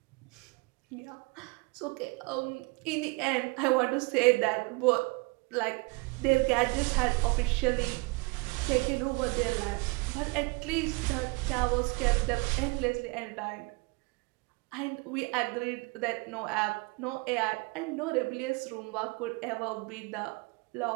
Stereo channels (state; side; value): quieter; left; 28.1 dB